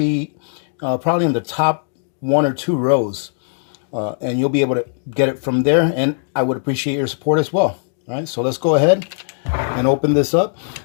probably in the top 1 or 2 rows. And you'll be able to get it from there, and I would appreciate your support as well. All right, so let's go ahead and open this up.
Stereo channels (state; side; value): silent; right; digital silence